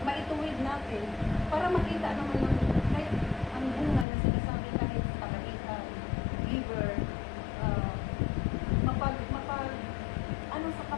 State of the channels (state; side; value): drops out; right; at 4.0 s